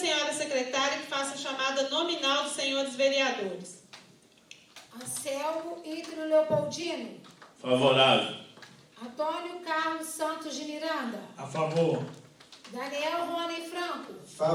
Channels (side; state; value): both; identical; correlation 1.00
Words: secretária que faça a chamada nominal dos senhores vereadores. Anselmo Ítrio Leopoldino. Favorável. Antônio Carlos Santos de Miranda. A favor. Daniel Rony Franco.